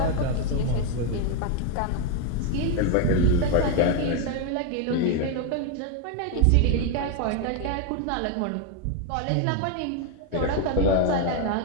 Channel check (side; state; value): both; different; correlation 0.01